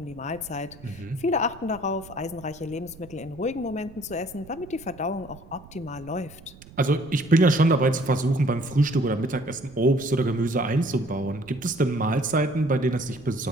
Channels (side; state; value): right; noise; rumble, 21 dB below the sound